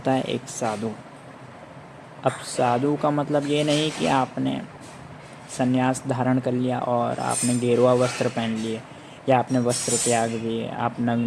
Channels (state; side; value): identical; both; correlation 1.00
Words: है एक साधु। अब साधु का मतलब ये नहीं कि आपने संन्यास धारण कर लिया और आपने गेरुआ वस्त्र पहन लिए, या आपने वस्त्र त्याग दिए, आप